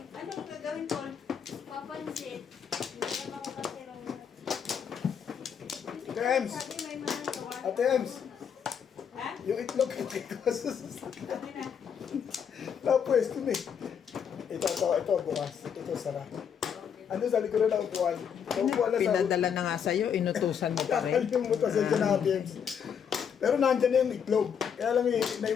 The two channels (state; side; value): quieter; right; 7.6 dB